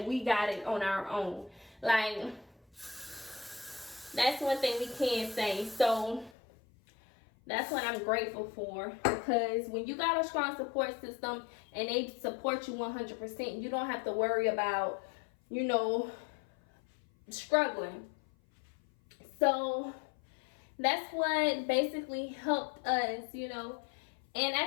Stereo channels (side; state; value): right; drops out; at 6.3 s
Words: we got it on our own. Like, that's one thing we can say. So that's what I'm grateful for, because when you got a strong support system and they support you 100%, you don't have to worry about, you know, struggling. So that's what basically helped us, you know. And